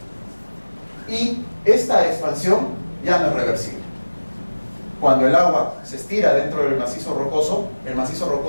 Y esta expansión ya no es reversible. Cuando el agua se estira dentro del macizo rocoso, el macizo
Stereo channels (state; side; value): inverted; both; correlation -1.00